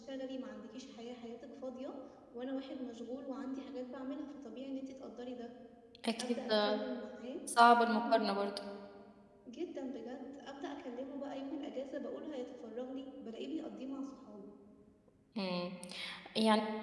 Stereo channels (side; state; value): both; identical; correlation 1.00